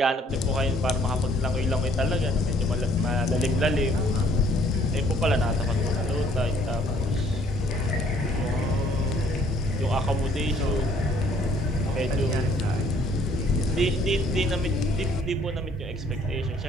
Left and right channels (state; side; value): normal; both; correlation 0.61